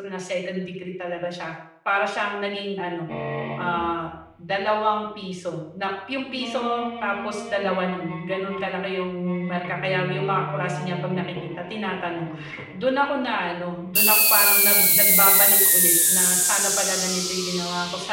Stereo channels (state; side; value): identical; both; correlation 1.00